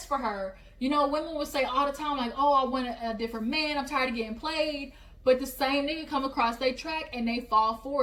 for her. You know, women will say all the time, like, oh, I want a different man, I'm tired of getting played. But the same nigga come across their track and they fall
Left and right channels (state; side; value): identical; both; correlation 1.00